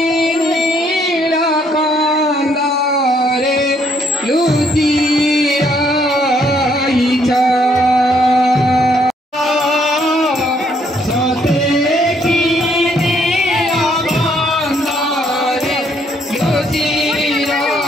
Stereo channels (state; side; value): normal; both; correlation 0.69